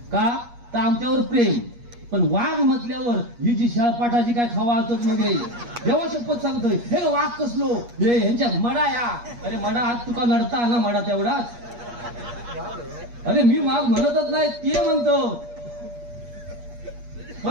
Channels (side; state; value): left; late; 8.4 ms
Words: का तर आमच्यावर प्रेम. पण वाघ म्हटल्यावर ही जी शाळपाठाची काय खावा असत मध्ये देवा शपथ सांगतोय हे वाघ कसलो हे ह्यांच्या मडा या. अरे मडा हात तुका नडता ना मडा तेवढाच. अरे मी वाघ म्हणतच नाही ते म्हणतो,